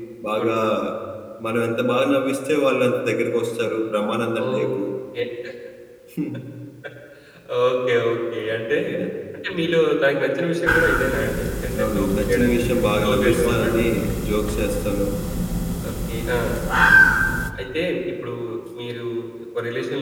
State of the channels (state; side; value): identical; both; correlation 1.00